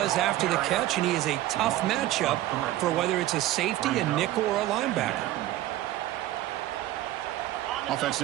after the catch, and he is a tough matchup for whether it's a safety, a nickel, or a linebacker. on the Offense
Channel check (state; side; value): quieter; left; 14.9 dB